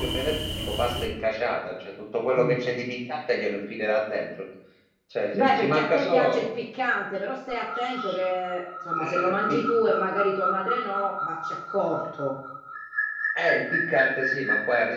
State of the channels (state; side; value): identical; both; correlation 1.00